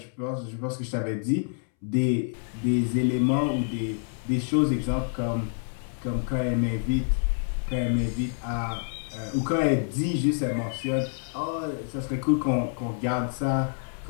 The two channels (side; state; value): right; silent; 60 dB below the other